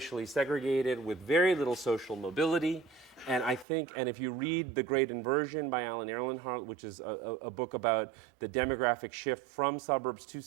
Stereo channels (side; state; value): left; drops out; at 3.7 s